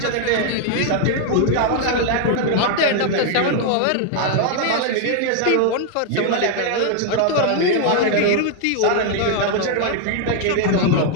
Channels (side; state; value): both; different; correlation 0.00